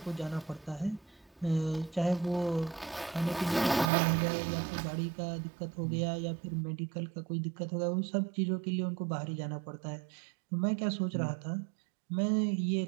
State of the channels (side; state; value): left; drops out; at 3.9 s